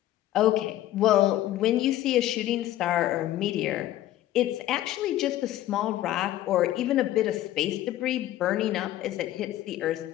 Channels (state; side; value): quieter; right; 13.8 dB